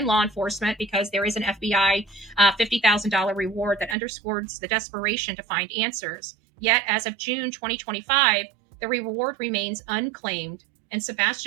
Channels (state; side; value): drops out; left; at 4.0 s